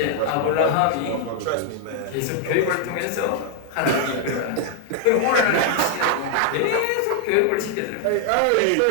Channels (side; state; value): both; different; correlation 0.00